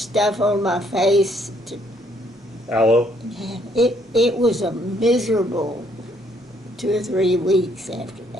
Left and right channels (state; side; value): normal; both; correlation 0.67